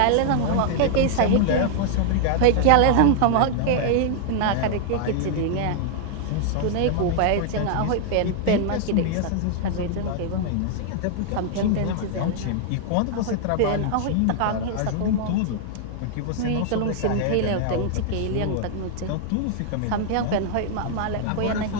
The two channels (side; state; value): both; different; correlation 0.00